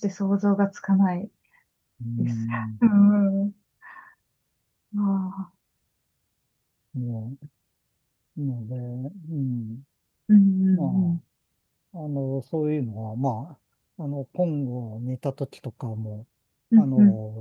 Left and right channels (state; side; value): identical; both; correlation 1.00